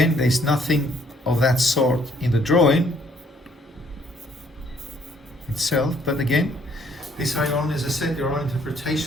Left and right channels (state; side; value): normal; both; correlation 0.64